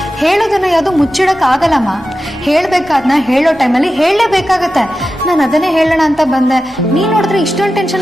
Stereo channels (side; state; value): both; normal; correlation 0.92